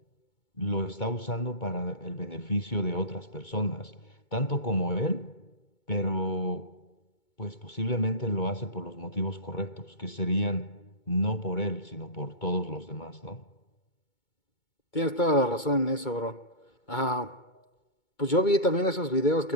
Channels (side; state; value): right; late; 2.2 ms